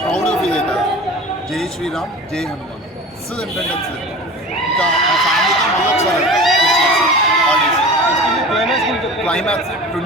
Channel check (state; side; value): normal; both; correlation 0.37